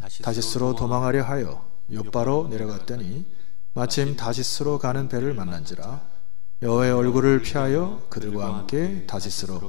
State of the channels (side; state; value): right; quieter; 33.3 dB